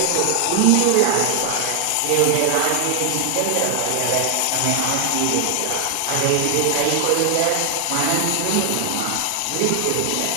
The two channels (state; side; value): different; both; correlation 0.00